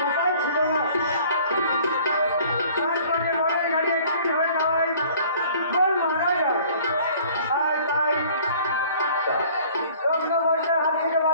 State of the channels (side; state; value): both; inverted; correlation -0.52